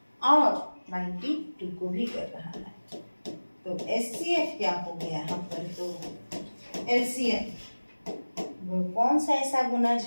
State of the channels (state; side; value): inverted; both; correlation -1.00